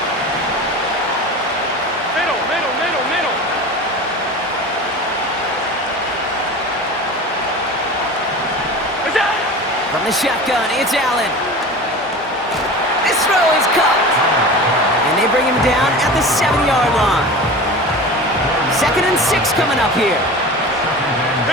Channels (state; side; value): normal; both; correlation 0.34